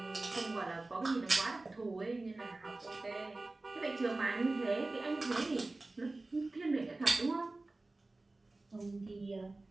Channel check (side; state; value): left; quieter; 3.1 dB